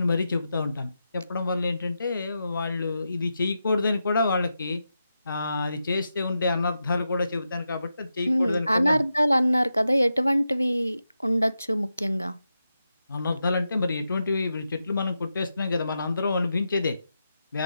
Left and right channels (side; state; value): both; inverted; correlation -0.88